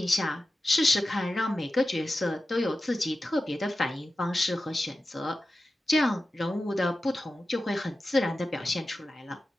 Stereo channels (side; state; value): both; normal; correlation 0.93